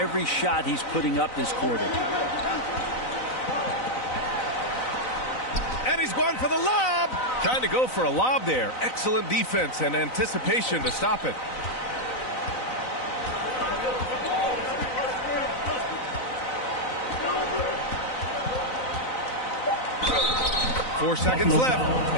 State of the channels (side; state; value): right; late; 4.0 ms